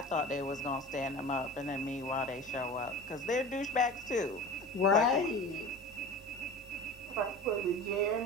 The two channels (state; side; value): normal; both; correlation 0.35